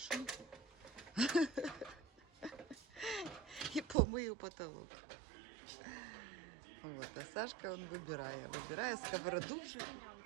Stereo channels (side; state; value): left; drops out; at 4.0 s